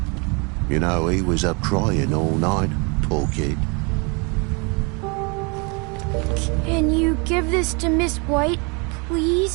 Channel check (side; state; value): left; quieter; 31.6 dB